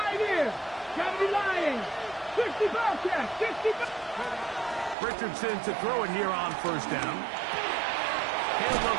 years. Gotta be lying. 65 check, 65. Richardson to throw it here on first down. He'll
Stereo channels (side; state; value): left; drops out; at 5.0 s